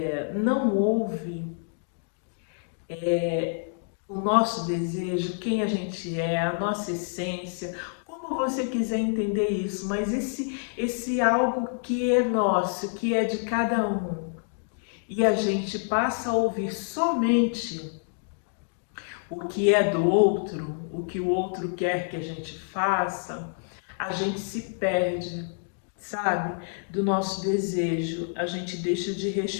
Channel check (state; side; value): silent; right; digital silence